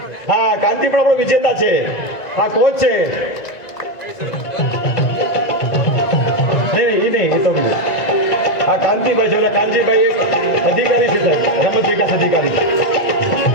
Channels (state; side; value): late; right; 1.9 ms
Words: હા, કાંતિ પણ આપણો વિજેતા છે. હા, કોચ છે. નહીં, એ તો હા, કાંતિભાઈ છે. કાંતિભાઈ એક અધિકારી છે સાહેબ, રમત વિકાસ અધિકારી.